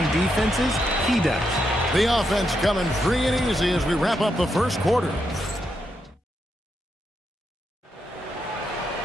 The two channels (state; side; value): normal; both; correlation 0.82